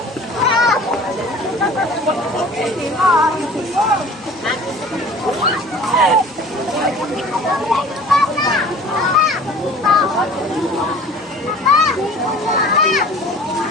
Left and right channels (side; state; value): both; normal; correlation 0.45